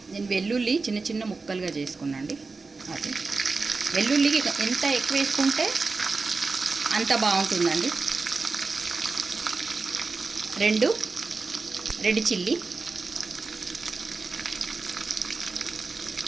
నేను వెల్లుల్లి చిన్న చిన్న ముక్కలుగా చేసుకున్నాండి. అది వెల్లుల్లికి ఎంత ఎక్కువ వేసుకుంటే అంత బాగుంటుందండి. 2 రెడ్ చిల్లీ,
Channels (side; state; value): left; quieter; 4.1 dB